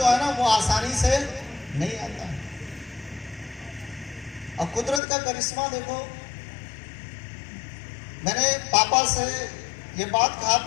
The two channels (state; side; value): drops out; right; at 5.0 s